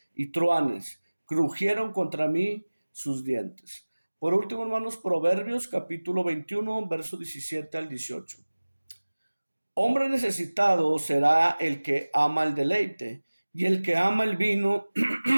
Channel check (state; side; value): inverted; both; correlation -1.00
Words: y truanes, crujieron contra mí sus dientes. Por último, hermanos, Proverbios capítulo 21, verso 17 al 18. Hombre necesitado será el que ama el deleite, y el que ama el vino